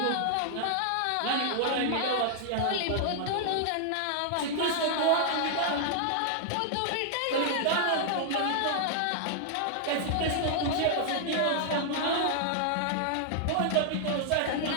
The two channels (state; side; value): different; both; correlation -0.01